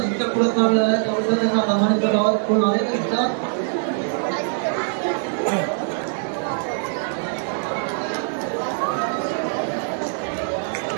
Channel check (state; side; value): silent; left; digital silence